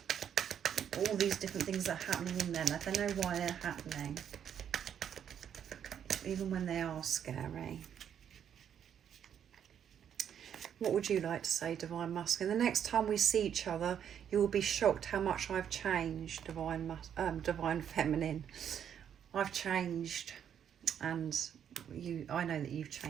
All these different things that are happening in them. They know why they're happening, even when they are scary. What would you like to say, Divine Masculine? The next time we see each other, you will be shocked how much I've changed, Divine Feminine. I've changed, and I know that you've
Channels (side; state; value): left; quieter; 8.9 dB